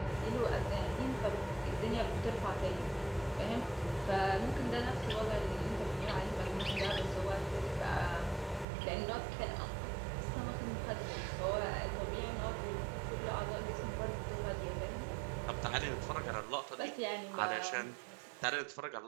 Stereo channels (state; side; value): drops out; left; at 8.7 s